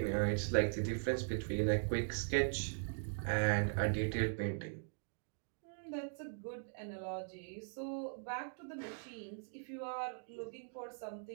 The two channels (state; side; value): silent; left; digital silence